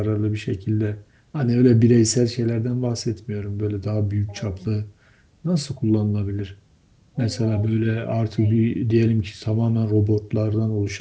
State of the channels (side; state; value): both; identical; correlation 1.00